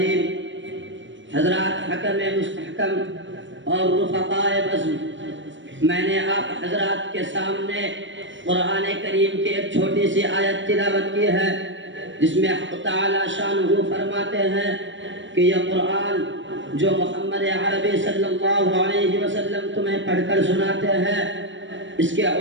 حضرات حکم مستحکم اور رفقائے بزم، میں نے آپ حضرات کے سامنے قرآن کریم کی ایک چھوٹی سی آیت تلاوت کی ہے جس میں حق تعالی شانہ فرماتے ہیں کہ یہ قرآن جو محمد عربی صلی اللہ علیہ وسلم تمہیں پڑھ کر سناتے ہیں، اس کے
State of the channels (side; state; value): left; late; 0.55 ms